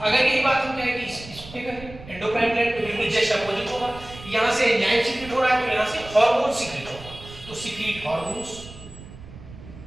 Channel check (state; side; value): noise; right; rumble, 17 dB below the sound